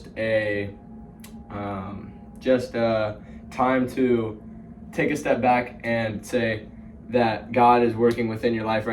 a time to take a step back and say that God is working within your life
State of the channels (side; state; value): both; identical; correlation 1.00